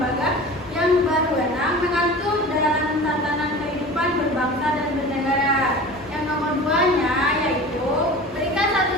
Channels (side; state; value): both; normal; correlation 0.37